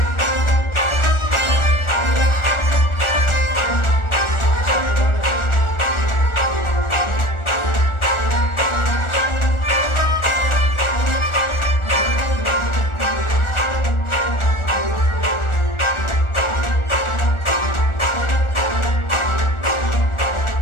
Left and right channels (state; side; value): late; right; 1.4 ms